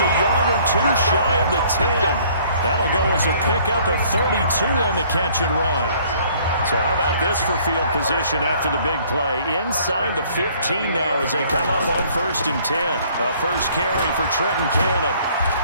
a yard or two shy of the 10. That'll go as a pickup of 32 on the catch and run. So how about this for field position after the big play? Inside the 15 now as they come up on 1st and 10. A first carry for Trenton Cannon.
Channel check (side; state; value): both; inverted; correlation -0.59